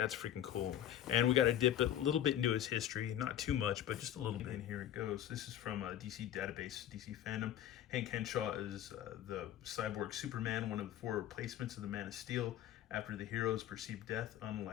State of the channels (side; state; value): right; quieter; 11.4 dB